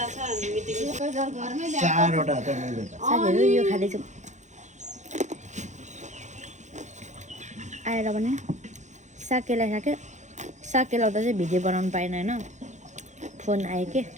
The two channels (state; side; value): late; left; 0.34 ms